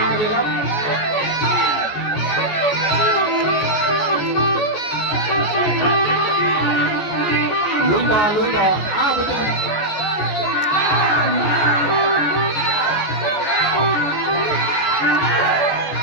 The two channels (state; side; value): late; right; 14 ms